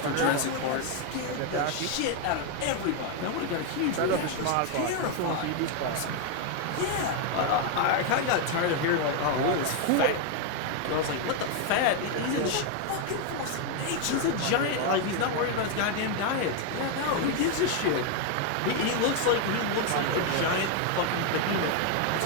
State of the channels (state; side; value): different; both; correlation 0.01